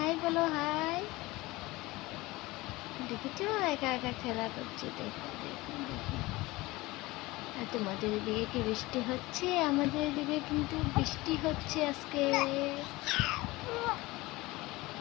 বলো। হাই। দেখেছো একা একা খেলা করছে। দেখো দেখো দেখো। আর তোমাদের এদিকে কি বৃষ্টি হচ্ছে? আমাদের এদিকে কিন্তু বৃষ্টি হচ্ছে আজকে।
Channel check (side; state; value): right; quieter; 20.7 dB